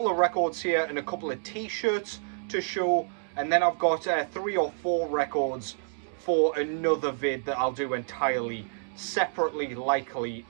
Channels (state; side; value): silent; left; digital silence